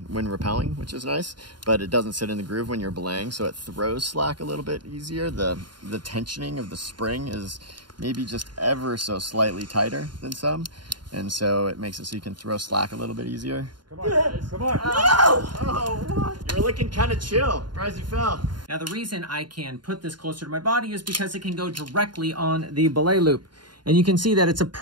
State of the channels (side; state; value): left; late; 0.71 ms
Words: rappelling, which is nice, but it doesn't sit in the groove when you're belaying, so it throws slack a little bit easier. The tensioning of the spring is maybe just ever so slightly tighter than some, and so it makes it so you can throw slack a little bit easier. Come on, guys. Come on. No! Oh, what? You were looking kind of chill. Surprised you fell. Now, the reason I can put this closer to my body is because it can go directly on the belay loop. And you can see that it's